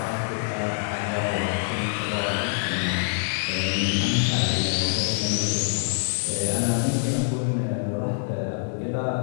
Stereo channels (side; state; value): right; silent; digital silence